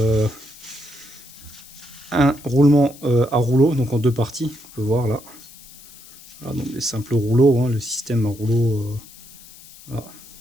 un roulement à rouleau, donc en deux parties, on peut voir là. Voilà, donc les simples rouleaux, hein, le système à rouleau, voilà,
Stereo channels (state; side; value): noise; left; hiss, 21 dB below the sound